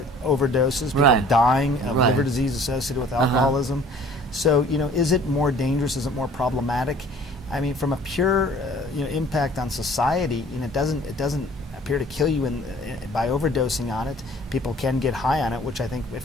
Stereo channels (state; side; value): normal; both; correlation 0.52